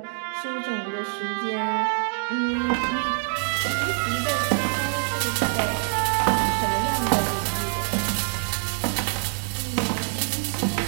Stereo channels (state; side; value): silent; left; 62 dB below the other